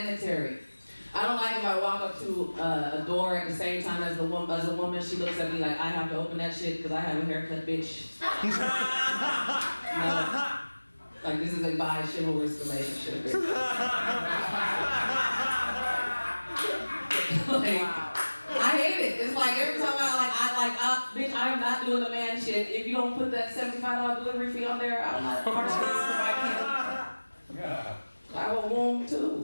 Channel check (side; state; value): both; inverted; correlation -1.00